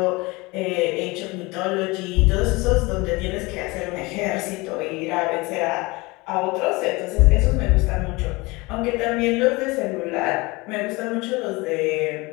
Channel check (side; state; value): right; quieter; 23.9 dB